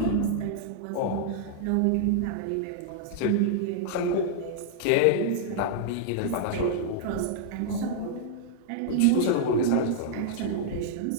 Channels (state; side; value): different; both; correlation -0.01